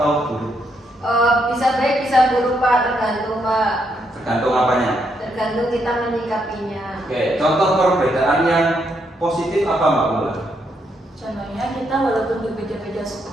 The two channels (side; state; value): both; normal; correlation 0.77